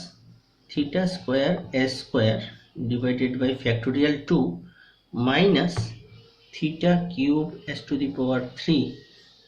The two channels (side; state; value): both; identical; correlation 1.00